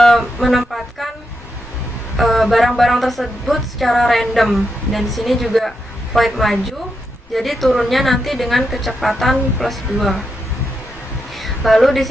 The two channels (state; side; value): normal; both; correlation 0.84